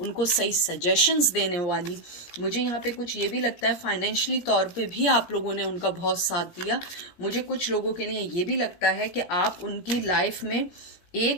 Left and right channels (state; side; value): late; right; 17 ms